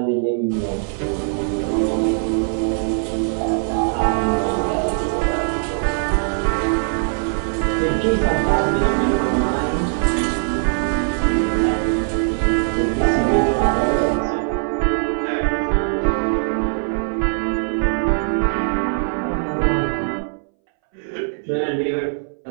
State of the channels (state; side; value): silent; left; 62 dB below the other